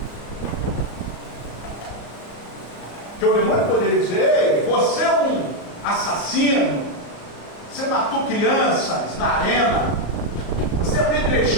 Que o demônio poderia dizer: ei, você é um assassino, você matou crianças na arena, você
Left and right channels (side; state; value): right; late; 34 ms